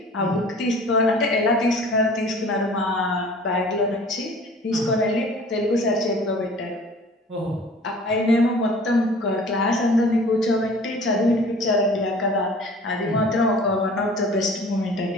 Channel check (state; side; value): normal; both; correlation 0.47